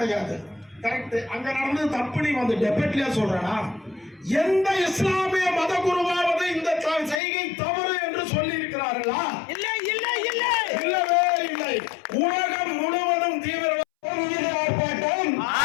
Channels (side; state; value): right; drops out; at 7.2 s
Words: கரெக்ட். அங்க நடந்தது தப்பு. நீ வந்து டெபேட்லயே சொல்றா, எந்த இஸ்லாமிய மத குருவாவது இந்த செய்கை தவறு என்று சொல்லி இருக்கிறார்களா? இல்லை இல்லை இல்லை, இல்லவே இல்லை. உலகம் முழுவதும் தீவிரவாதம் மீது ஆர்ப்பாட்டம்,